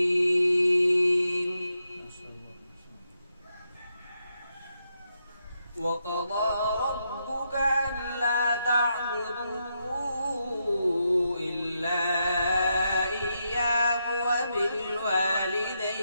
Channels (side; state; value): both; inverted; correlation -0.83